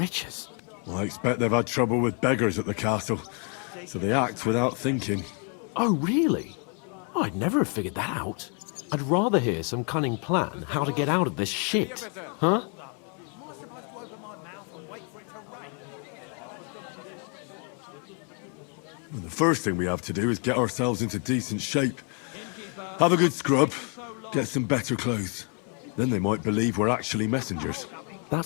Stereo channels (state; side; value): quieter; right; 38.1 dB